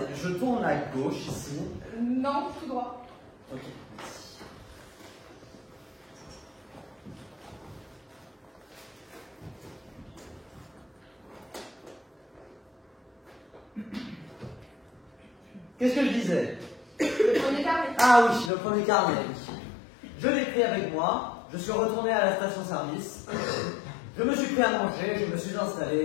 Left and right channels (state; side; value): drops out; right; at 18.5 s